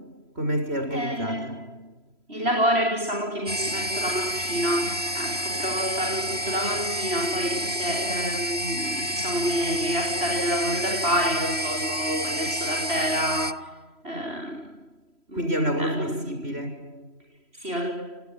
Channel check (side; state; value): left; late; 3.0 ms